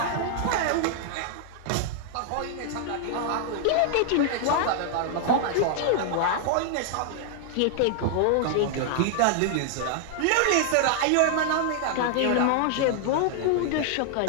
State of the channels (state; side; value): different; both; correlation 0.00